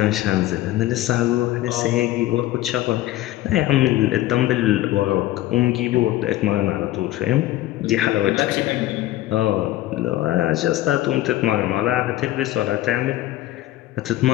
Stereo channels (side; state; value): right; quieter; 15.3 dB